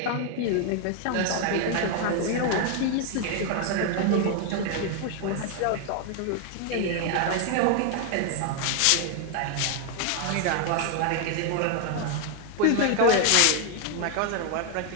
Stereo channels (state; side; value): different; both; correlation 0.00